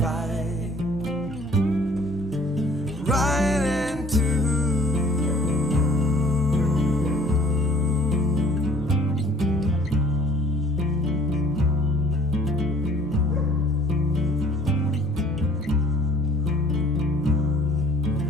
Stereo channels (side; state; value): both; normal; correlation 0.54